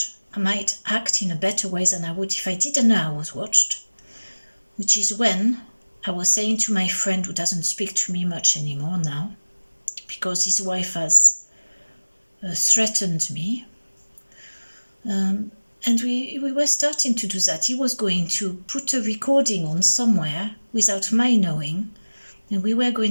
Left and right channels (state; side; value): inverted; both; correlation -1.00